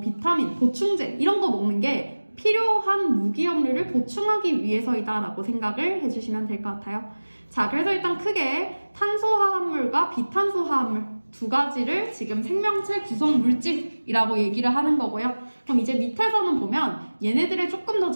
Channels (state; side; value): inverted; both; correlation -1.00